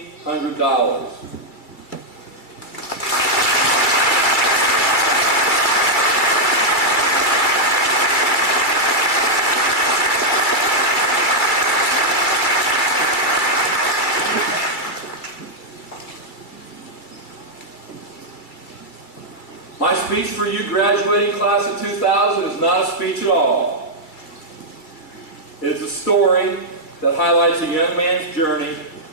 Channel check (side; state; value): right; late; 2.3 ms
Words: My speech for you, graduating class of 2000, is not a speech at all. It is a story that highlights a young man's journey